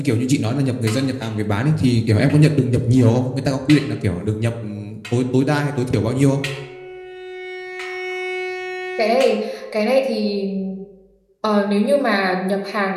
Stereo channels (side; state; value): both; identical; correlation 1.00